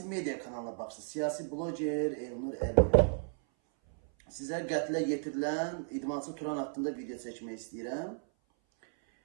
medya kanalına baxsınız. Siyasi bloger Elnur Əliyev. Sizə qətlə yetirilən idmançı Turan haqqında video çəkmək istəyirəm.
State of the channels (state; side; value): silent; left; 55 dB below the other